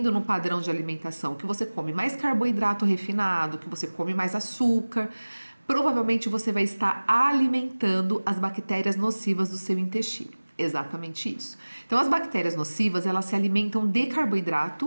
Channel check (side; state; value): both; inverted; correlation -1.00